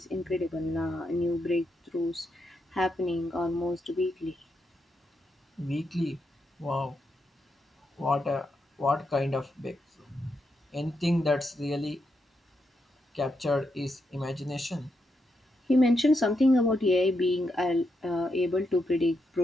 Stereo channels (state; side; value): normal; both; correlation 0.82